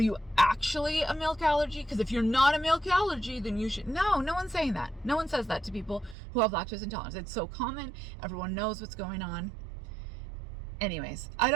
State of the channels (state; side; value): drops out; left; at 6.2 s